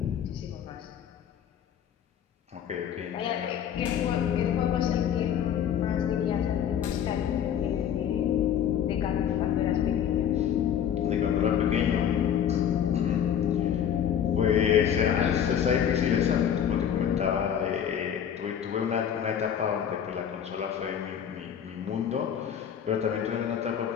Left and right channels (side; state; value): right; quieter; 9.0 dB